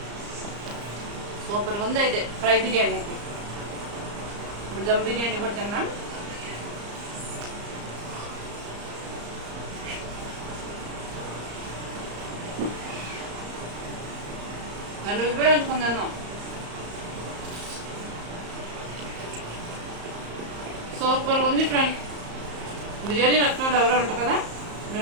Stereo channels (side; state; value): left; late; 34 ms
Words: సూపర్గా ఉంది. అయితే ఫ్రై బిర్యానీ అయితే ఇప్పుడు దమ్ బిర్యానీ కూడా తిన్నాం. నన్ను ఉపయోగించుకుందాం. సూపర్గా ఉంది ఫ్రెండ్. బిర్యానీ నచ్చిన వాళ్ళు ఎవరో ఉంటారు కదా,